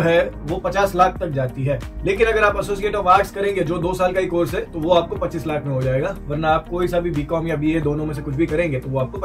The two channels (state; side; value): identical; both; correlation 1.00